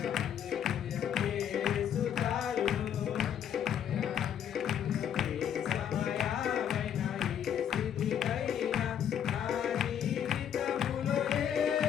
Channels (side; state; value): right; quieter; 9.2 dB